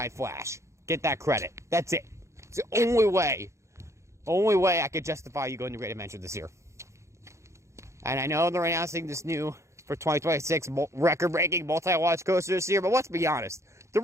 Flash. Get that credit. That's it. It's the only way I could justify you going to Great Adventure this year. And I know they're announcing this new, for 2026, record-breaking multi-launch coaster this year, but let's be honest. The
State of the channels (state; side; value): late; left; 0.14 ms